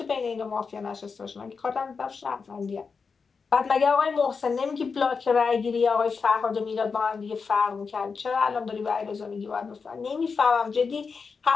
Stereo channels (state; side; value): quieter; right; 5.2 dB